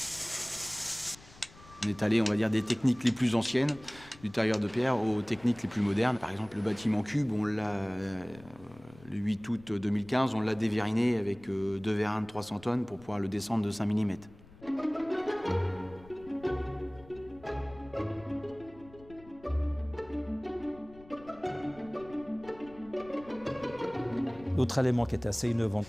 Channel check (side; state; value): left; noise; rumble, 22 dB below the sound